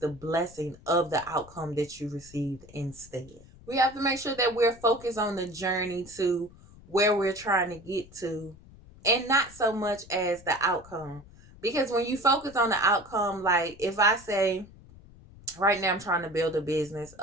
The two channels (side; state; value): left; noise; rumble, 22 dB below the sound